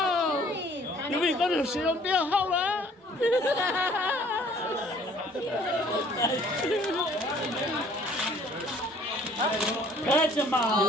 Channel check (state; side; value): normal; both; correlation 0.57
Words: Yubi có được sử dụng tiêu không đó? Catch him out.